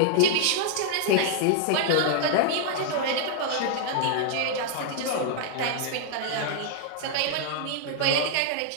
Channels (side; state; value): both; different; correlation -0.01